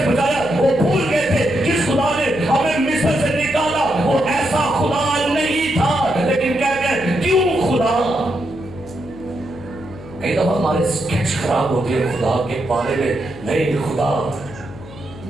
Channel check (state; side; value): noise; left; hum, 16 dB below the sound